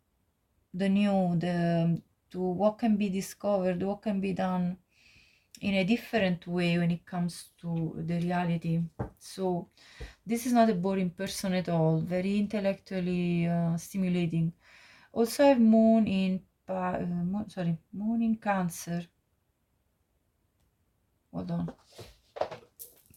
the new, to what can be discovered, what can be done in a different way when it comes to the reality. So this is not a boring person at all, very intellectually stimulating. Also I have moon in moon in Cancer. Hold on.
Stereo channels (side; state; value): both; identical; correlation 1.00